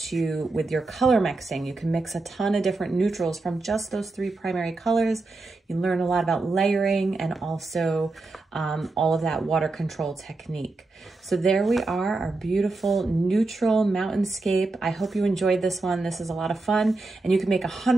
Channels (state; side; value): quieter; left; 3.4 dB